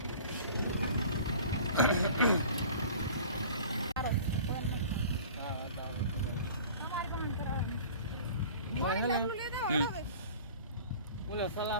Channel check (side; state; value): both; inverted; correlation -0.43